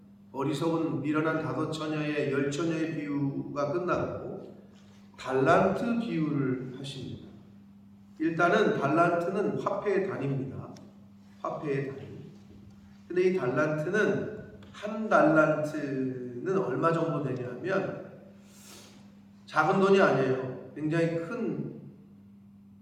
어리석은 미련한 다섯 처녀의 10처녀의 비유가 끝나고 달란트 비유를 하십니다. 일단은 달란트는 화폐의 단위입니다. 화폐의 단위. 근데 이 달란트는 한 달란트는 얼마 정도 되냐면 작은 돈이 아니에요. 굉장히 큰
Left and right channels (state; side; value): identical; both; correlation 1.00